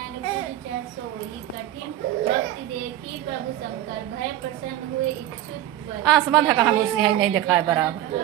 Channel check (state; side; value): quieter; left; 13.4 dB